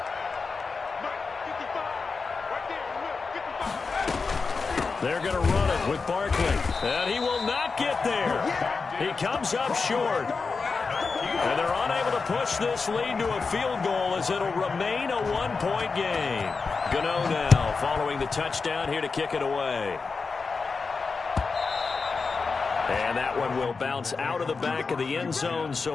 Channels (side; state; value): right; quieter; 4.6 dB